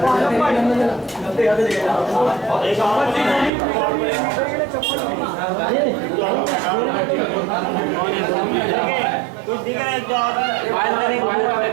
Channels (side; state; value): left; drops out; at 3.5 s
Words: कुछ दिख रहा है तो आप